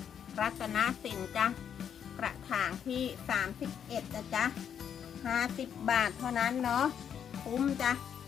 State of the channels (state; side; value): quieter; right; 8.4 dB